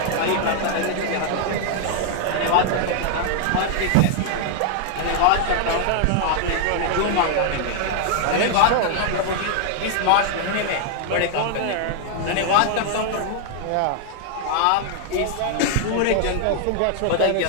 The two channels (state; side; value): different; both; correlation 0.00